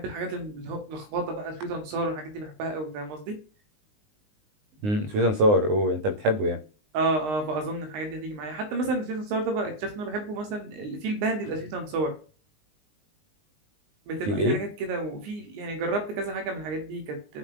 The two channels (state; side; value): late; left; 20 ms